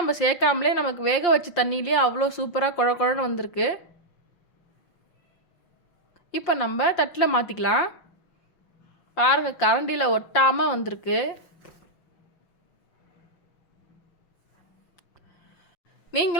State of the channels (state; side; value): late; right; 5.7 ms